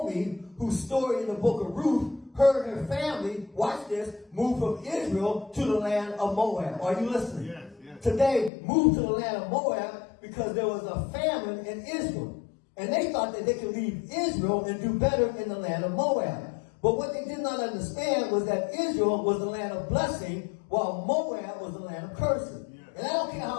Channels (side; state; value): right; drops out; at 8.5 s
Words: whose story in the book of Ruth, her and her family, watch this, moved from Israel to the land of Moab. Are you listening? Yes, yes. Today, moved to the land of Moab because there was a famine in Israel. And they thought that they could leave Israel and do better in the land of Moab. But what they did not understand was that Israel was the land of blessing, while Moab was the land of cursing. Yes. And I don't care